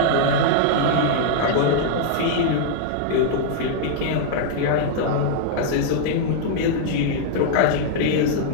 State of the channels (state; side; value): different; both; correlation -0.01